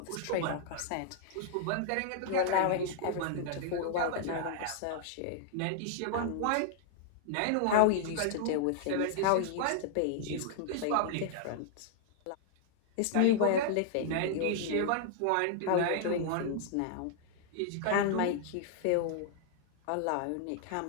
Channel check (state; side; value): different; both; correlation -0.01